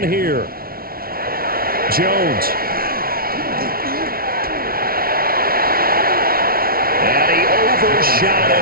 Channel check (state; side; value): late; left; 0.43 ms